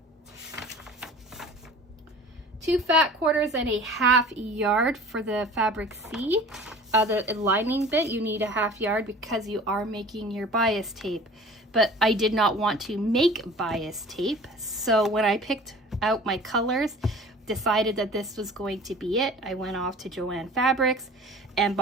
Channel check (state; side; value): normal; both; correlation 0.44